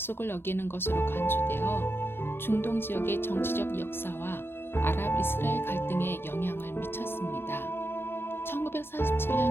어기는 것으로 간주되어 중동 지역의 정치적 역사와 아랍 이스라엘 갈등에 영향을 미쳤습니다. 1947년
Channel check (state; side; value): late; right; 0.11 ms